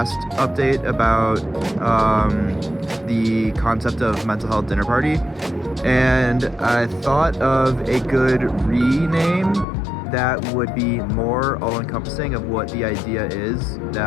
update about the concept of mental health dinner party, and I thought of a good rename that would be more all-encompassing of what the idea is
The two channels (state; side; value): drops out; right; at 9.7 s